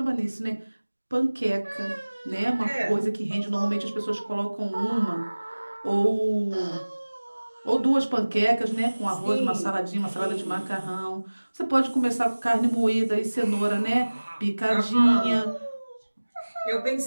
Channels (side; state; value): both; inverted; correlation -1.00